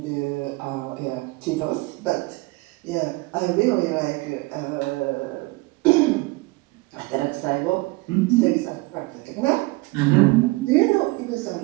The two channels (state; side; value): quieter; left; 23.7 dB